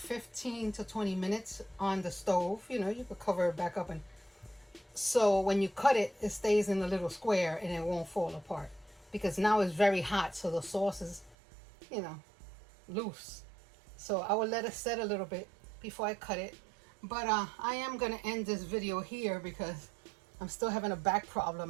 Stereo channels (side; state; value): left; drops out; at 11.4 s